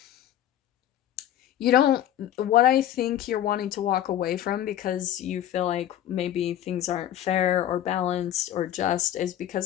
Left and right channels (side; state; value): right; quieter; 11.7 dB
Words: you don't, what I think you're wanting to walk away from because you feel like maybe things aren't fair or balanced or just, is